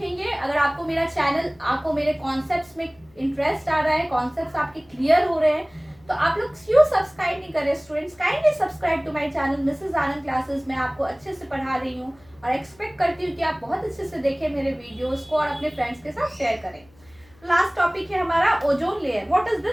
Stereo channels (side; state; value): left; noise; hum, 29 dB below the sound